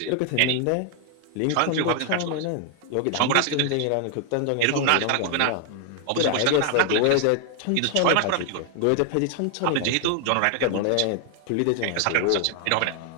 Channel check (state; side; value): different; both; correlation 0.00